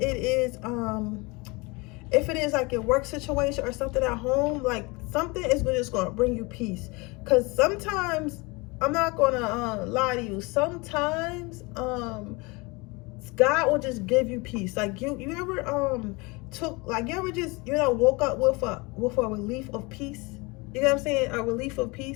it is like your work situation or something at home, like something is just going to bring you peace. Because sometimes, I'm not going to lie to you, sometimes God will just give you peace. Like you ever you ever just, woke up with a relief of peace? You know what I'm saying? A relief of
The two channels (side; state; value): right; quieter; 26.3 dB